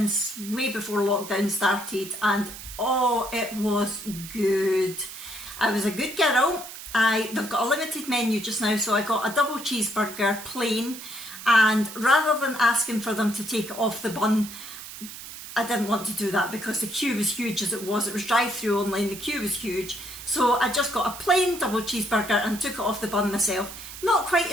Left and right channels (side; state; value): right; noise; hiss, 12 dB below the sound